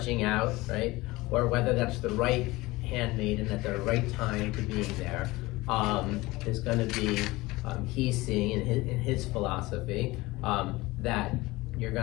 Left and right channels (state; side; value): quieter; right; 20.6 dB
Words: out, right, or whether that's the right handmaiden at the right time to being there, is going to be he's seeing in his philosophy that you're